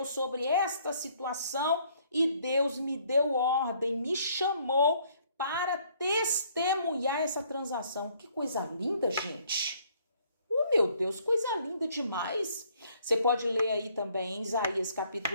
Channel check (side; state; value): both; inverted; correlation -0.64